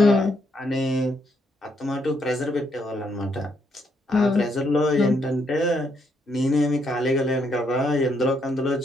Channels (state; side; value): normal; both; correlation 0.75